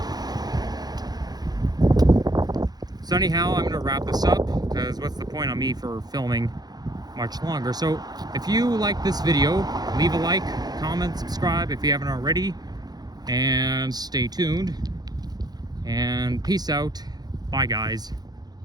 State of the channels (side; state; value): left; late; 0.19 ms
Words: So anyhow, I'm gonna wrap this up, because what's the point of me for filming much longer? So if you like this video, leave a like, comment, subscribe if you haven't already, and stay tuned. And peace out. Bye, guys.